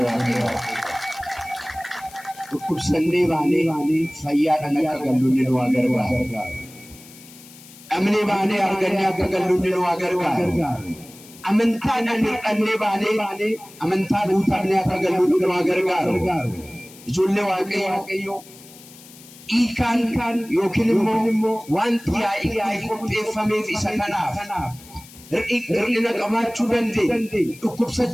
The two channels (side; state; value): left; noise; hiss, 20 dB below the sound